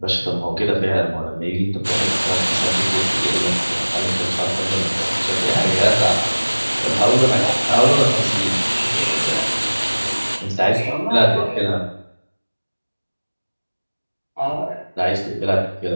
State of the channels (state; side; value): inverted; both; correlation -1.00